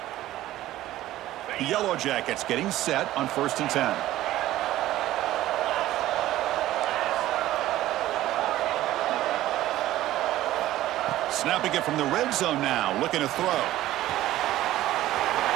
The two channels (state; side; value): quieter; left; 14.8 dB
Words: The Yellow Jackets getting set on 1st and 10. Snapping it from the red zone now, looking to throw.